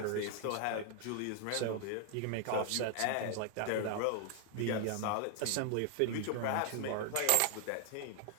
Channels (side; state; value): both; different; correlation 0.00